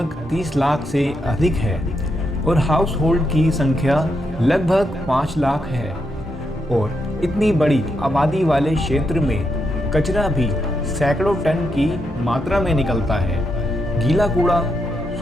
30 लाख से अधिक है और हाउस होल्ड की संख्या लगभग 5 लाख है, और इतनी बड़ी आबादी वाले क्षेत्र में कचरा भी सैकड़ों टन की मात्रा में निकलता है। गीला कूड़ा,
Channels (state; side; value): normal; both; correlation 0.81